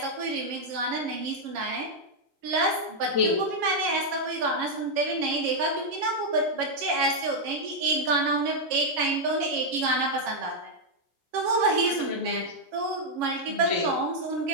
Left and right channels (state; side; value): late; left; 7.2 ms